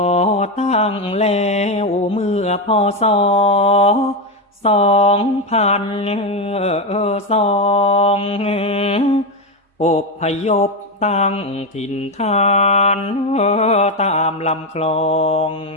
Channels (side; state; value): both; normal; correlation 0.10